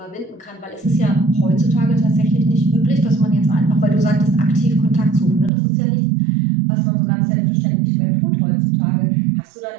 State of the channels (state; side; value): drops out; left; at 5.5 s